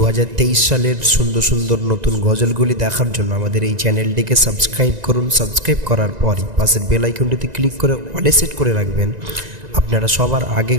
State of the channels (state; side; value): late; left; 1.9 ms